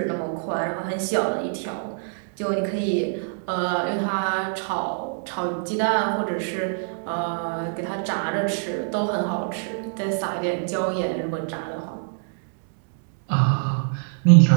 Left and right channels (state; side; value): silent; left; digital silence